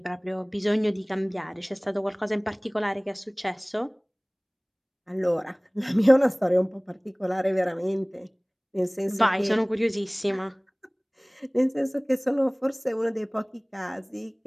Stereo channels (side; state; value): both; identical; correlation 1.00